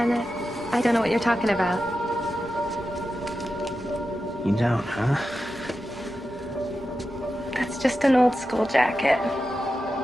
I don't know what you're talking about. You don't, huh? That's just an old school jacket.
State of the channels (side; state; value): both; normal; correlation 0.91